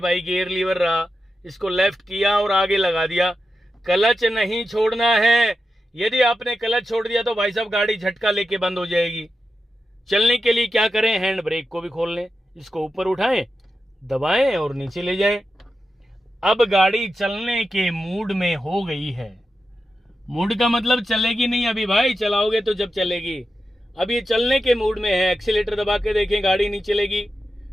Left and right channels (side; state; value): both; normal; correlation 0.90